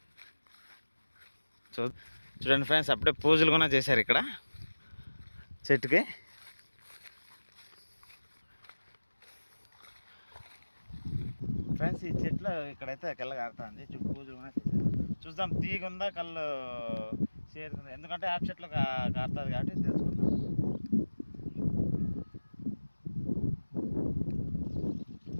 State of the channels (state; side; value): inverted; both; correlation -1.00